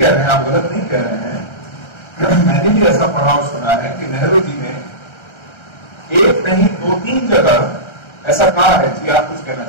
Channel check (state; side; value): late; right; 1.3 ms